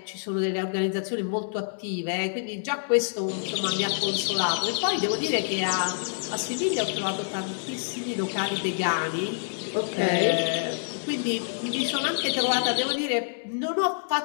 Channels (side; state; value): right; silent; digital silence